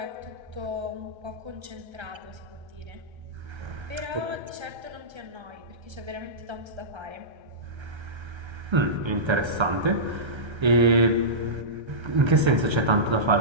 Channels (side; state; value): left; late; 1.3 ms